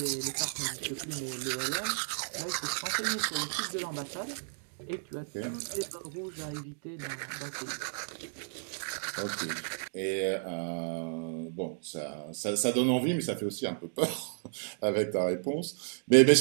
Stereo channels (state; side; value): silent; left; digital silence